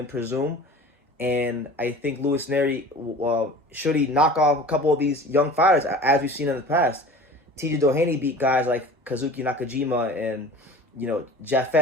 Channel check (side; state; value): both; normal; correlation 0.41